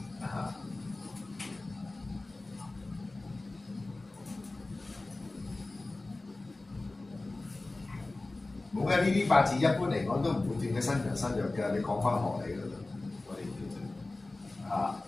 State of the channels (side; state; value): right; quieter; 3.1 dB